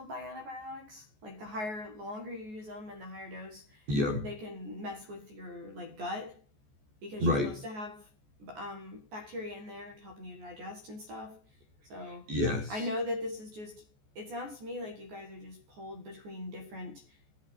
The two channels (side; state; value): left; late; 14 ms